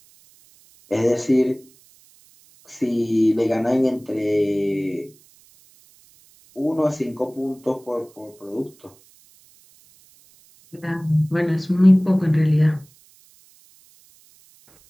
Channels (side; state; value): right; noise; hiss, 29 dB below the sound